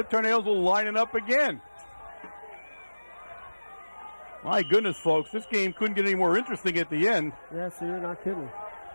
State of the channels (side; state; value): both; inverted; correlation -1.00